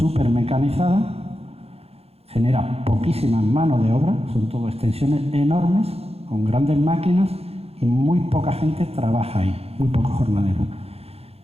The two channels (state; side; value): late; left; 0.29 ms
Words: mecanizada, genera poquísima mano de obra, son todo extensiones enormes, con grandes máquinas, y muy poca gente trabaja ahí, muy pocos jornaleros.